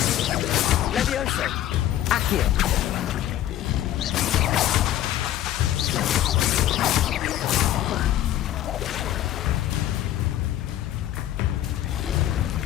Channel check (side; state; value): right; quieter; 12.6 dB